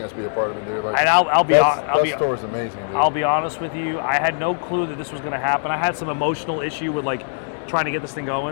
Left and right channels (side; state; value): right; silent; digital silence